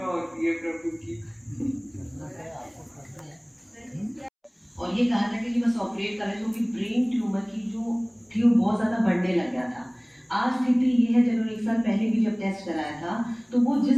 होती है प्रभु की। और ये कहा था कि बस ऑपरेट करें क्योंकि ब्रेन ट्यूमर की जो थी वो बहुत ज़्यादा बढ़ने लग गया था। आज स्थिति ये है, जब उन्होंने 1 साल पहले भी जब टेस्ट कराया था तो वो जिस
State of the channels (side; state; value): both; identical; correlation 1.00